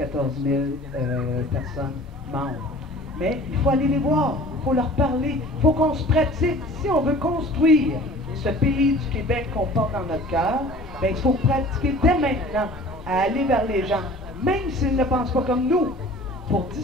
000 personnes membres. Mais il faut aller les voir, il faut leur parler, il faut qu'on se pratique. Si on veut construire ce pays du Québec qu'on porte dans notre cœur, ben il faut pratiquer dès maintenant à aller vers les gens, même s'ils ne pensent pas comme nous, pour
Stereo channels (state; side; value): normal; both; correlation 0.46